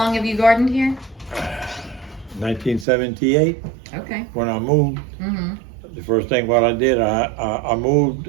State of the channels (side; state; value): left; drops out; at 2.9 s